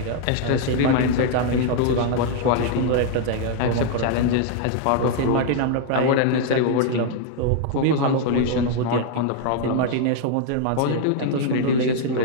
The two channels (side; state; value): both; different; correlation 0.00